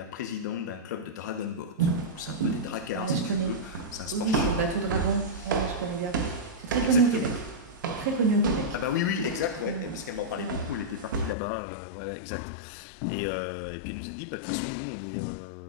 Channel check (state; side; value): drops out; right; at 11.4 s